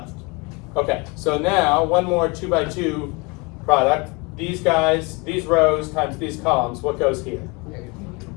Okay, so now one more 2 by 2 product. These guys, these rows times these columns, what goes here?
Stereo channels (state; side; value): quieter; right; 28.4 dB